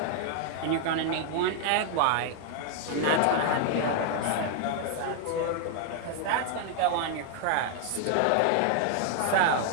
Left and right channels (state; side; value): different; both; correlation 0.00